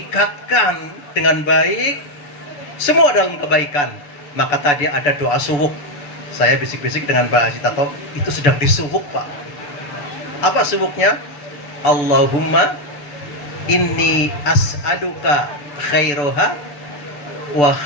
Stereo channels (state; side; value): late; right; 6.9 ms